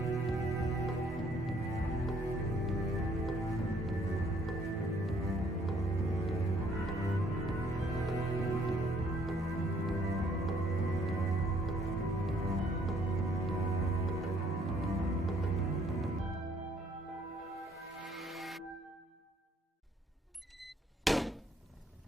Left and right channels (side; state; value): both; normal; correlation 0.65